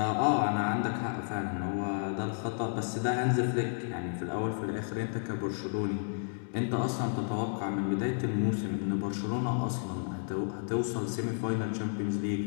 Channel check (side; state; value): right; silent; digital silence